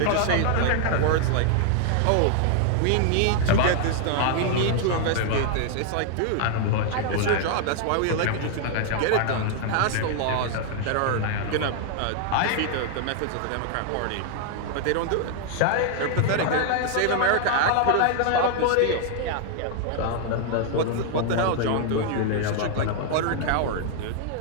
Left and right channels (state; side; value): different; both; correlation 0.00